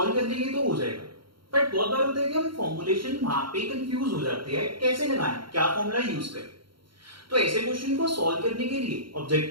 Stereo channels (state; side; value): late; left; 0.73 ms